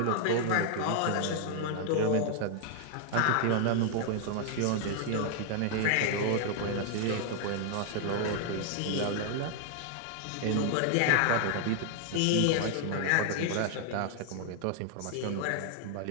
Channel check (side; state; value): both; different; correlation 0.00